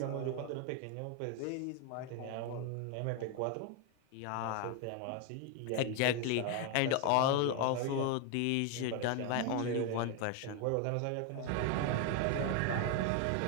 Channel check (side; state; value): both; different; correlation 0.01